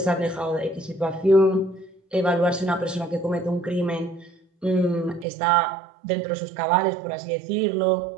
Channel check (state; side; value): drops out; left; at 5.2 s